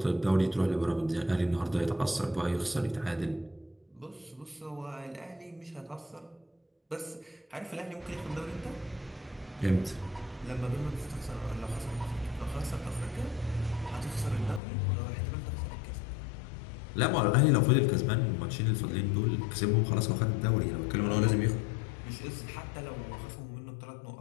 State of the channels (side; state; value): right; drops out; at 14.6 s